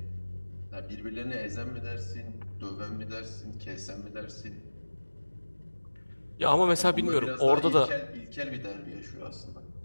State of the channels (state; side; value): inverted; both; correlation -1.00